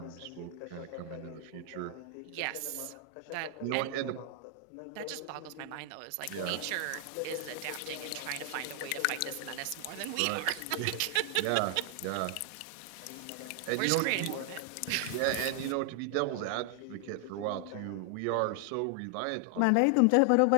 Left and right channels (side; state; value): both; different; correlation 0.00